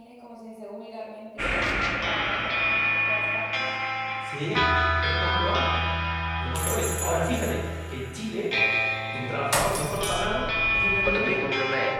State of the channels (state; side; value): identical; both; correlation 1.00